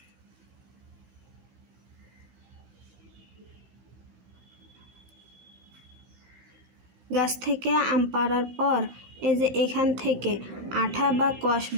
গাছ থেকে আম পাড়ার পর এই যে এখান থেকে আঠা বা কষ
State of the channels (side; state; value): left; late; 15 ms